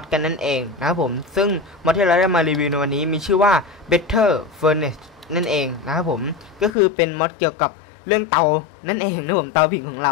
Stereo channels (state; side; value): drops out; right; at 6.7 s